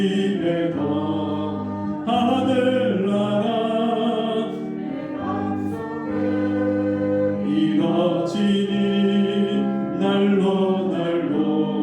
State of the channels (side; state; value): both; identical; correlation 1.00